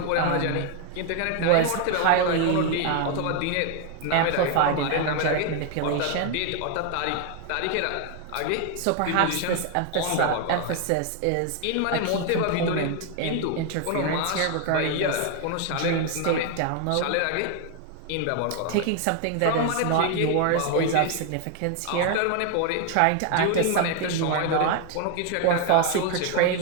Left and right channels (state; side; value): different; both; correlation 0.01